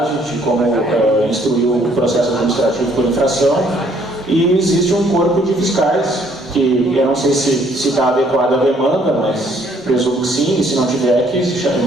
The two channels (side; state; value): both; normal; correlation 0.64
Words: de como instruir o processo administrativo por infração, e existe um corpo de fiscais, que eu não sei se está adequado à demanda, mas presumo que sim, e se não tiver, que se chame